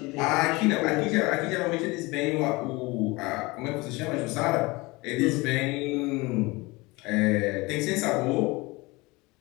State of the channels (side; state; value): right; quieter; 23.6 dB